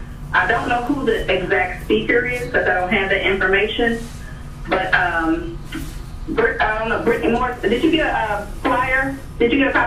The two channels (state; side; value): identical; both; correlation 1.00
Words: I don't know who the exact speaker is because I don't have that information. But I don't know, Brittany Moore, did you get a flyer? Did you get a